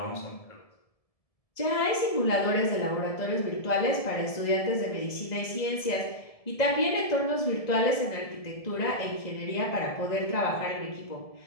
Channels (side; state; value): right; late; 1.7 ms